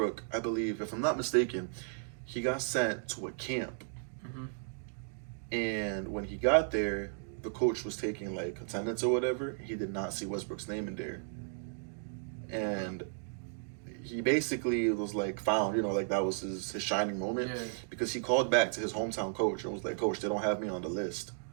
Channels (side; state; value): left; silent; digital silence